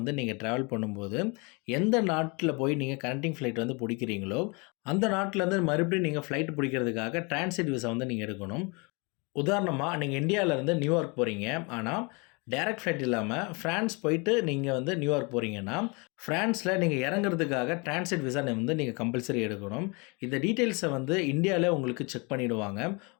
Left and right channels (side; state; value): right; quieter; 30.2 dB